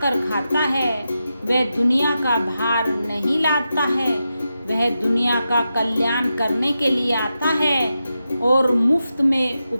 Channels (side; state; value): both; inverted; correlation -0.89